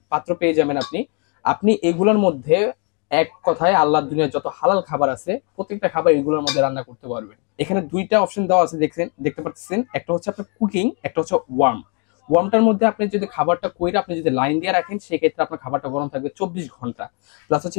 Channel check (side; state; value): right; quieter; 37.0 dB